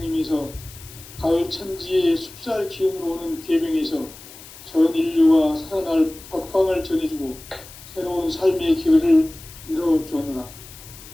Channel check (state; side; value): noise; left; hiss, 18 dB below the sound